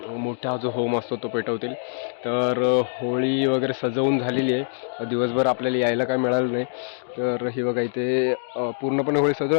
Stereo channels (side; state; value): right; silent; digital silence